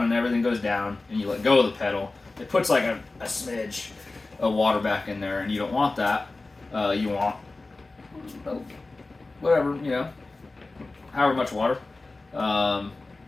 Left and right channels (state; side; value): quieter; right; 3.3 dB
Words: and everything goes down and you let go of the pedal, it puts like a smidge of water back in there, and you don't want that. You want whatever, however much water.